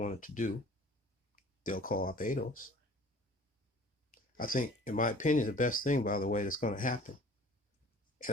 to do. They'll co-opt ADOS. I think, in my opinion, the best thing, by the way, that's going to happen,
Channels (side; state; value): both; normal; correlation 0.48